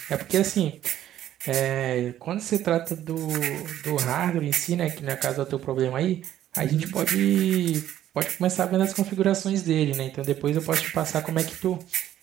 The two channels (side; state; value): left; quieter; 12.0 dB